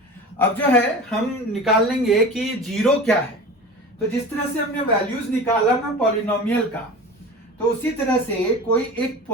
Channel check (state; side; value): normal; both; correlation 0.34